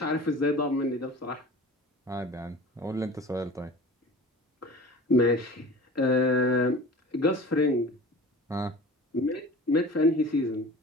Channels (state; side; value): normal; both; correlation 0.40